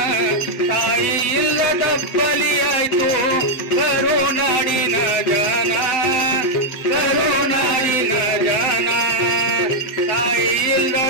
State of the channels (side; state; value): right; late; 7.7 ms